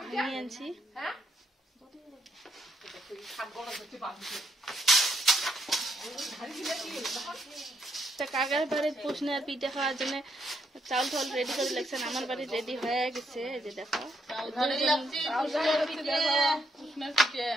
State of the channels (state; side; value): normal; both; correlation 0.76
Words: নিয়ে আনছি। কাকার বাড়ির পুষনে আর পিঠে খাওয়ার জন্য চাউল টাউল রেডি করে লাগছেন। আমার বাড়ি রেডি হয়ে গেছে। এই যে দেখো